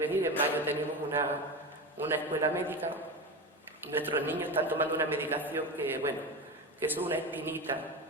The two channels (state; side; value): normal; both; correlation 0.23